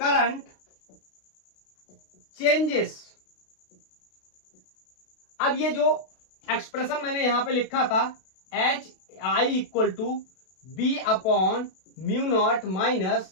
चेंजेस। अब ये जो एक्सप्रेशन मैंने यहां पे लिखा था, H I equal to B upon mu not minus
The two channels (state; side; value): late; right; 32 ms